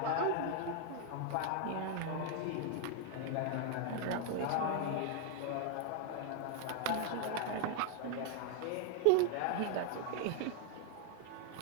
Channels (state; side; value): different; both; correlation 0.00